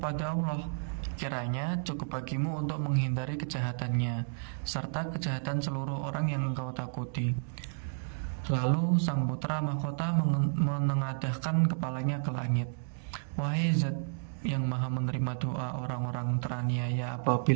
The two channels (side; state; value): left; silent; digital silence